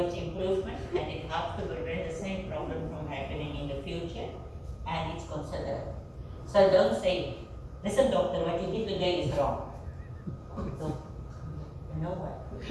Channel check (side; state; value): both; identical; correlation 1.00